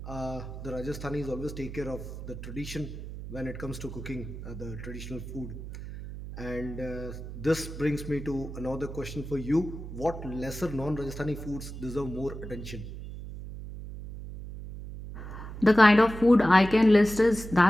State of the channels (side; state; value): right; noise; hum, 10 dB below the sound